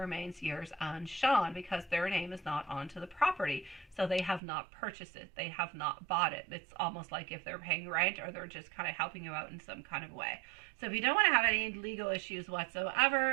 yours and Sean, because their name is not onto the property. So they have not purchased it. They have not bought it. It's almost like if they're paying rent or they're just kind of helping you out in some kind of way. So if you don't want to have any legal issues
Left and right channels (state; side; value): drops out; left; at 4.4 s